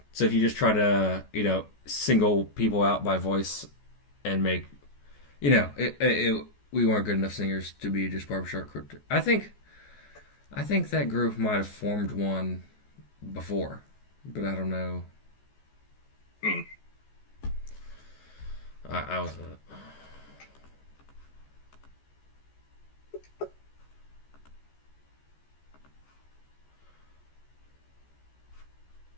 if you just try to, single people out by voice and make we weren't good enough singers to be just barbershop crypto. I think that group might have formed one before, but I don't know. I was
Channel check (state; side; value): late; right; 14 ms